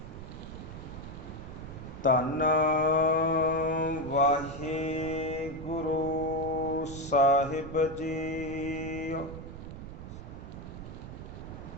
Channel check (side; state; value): right; noise; rumble, 11 dB below the sound